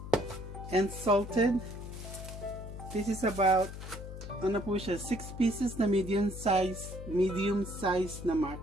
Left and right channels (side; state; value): left; noise; hum, 10 dB below the sound